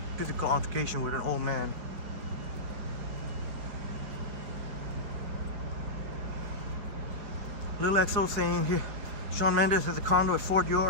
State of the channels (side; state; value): left; late; 4.7 ms